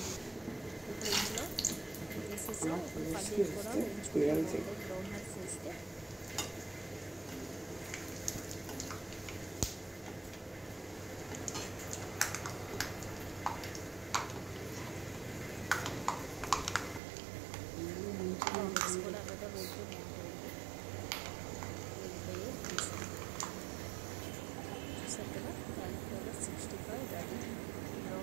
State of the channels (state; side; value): drops out; left; at 17.0 s